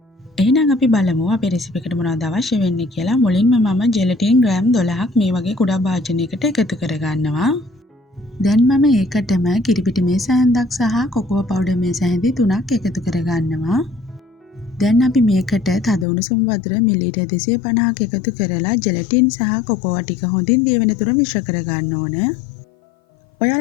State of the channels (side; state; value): right; drops out; at 16.1 s